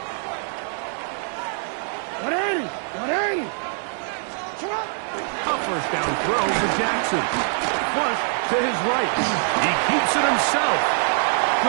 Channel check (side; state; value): left; silent; 61 dB below the other